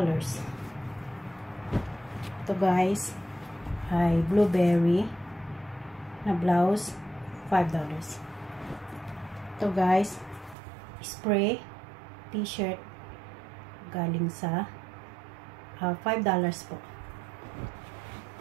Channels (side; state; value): left; drops out; at 10.6 s